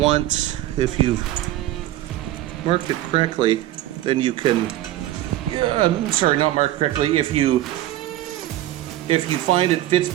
if you've marked it correctly, then you can. I'm sorry, not marked correctly. If you find it fits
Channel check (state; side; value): quieter; left; 14.3 dB